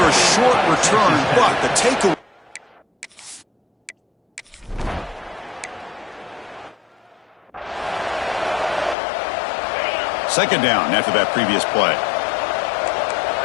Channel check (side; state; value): right; drops out; at 9.0 s